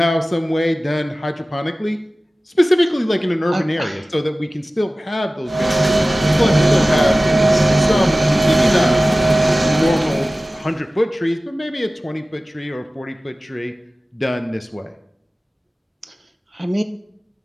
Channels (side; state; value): both; normal; correlation 0.97